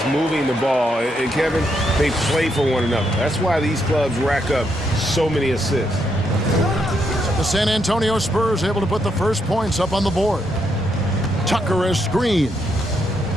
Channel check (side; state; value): both; normal; correlation 0.78